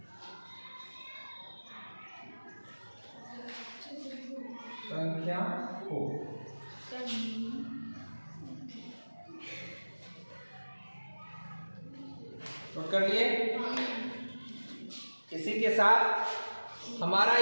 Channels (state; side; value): inverted; both; correlation -1.00